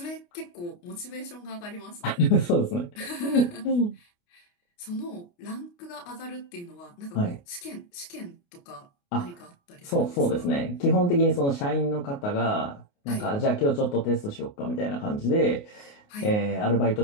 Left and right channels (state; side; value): late; right; 29 ms